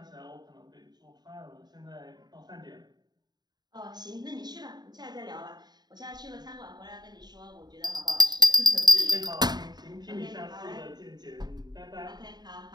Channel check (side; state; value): left; late; 0.20 ms